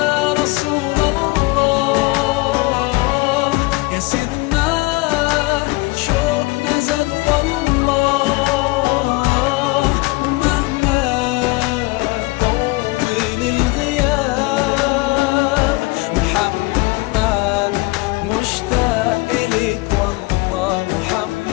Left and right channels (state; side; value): quieter; right; 23.0 dB